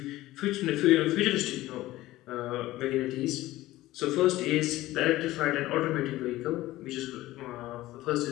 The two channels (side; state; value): right; quieter; 16.8 dB